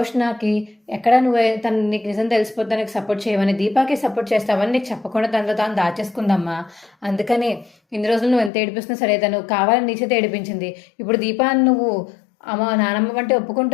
ఎక్కడ నువ్వు తను నీకు నిజం తెలిసిపోతే నీకు సపోర్ట్ చేయవని దీపాకి సపోర్ట్ చేస్తావని నీకు చెప్పకుండా తనలో తాను దాచేసుకుందమ్మా. అందుకనే ఇన్ని రోజులు నువ్వు ఎంత ఏడిపిస్తున్నా సరే తను కావాలని నీ చేత ఏడిపించింది. ఇప్పుడు దీపాన్ని నువ్వు అమ్మ నానమ్మ అంటే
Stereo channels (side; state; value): right; drops out; at 8.5 s